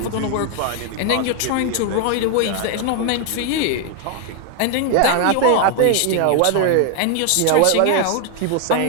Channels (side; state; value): both; different; correlation 0.01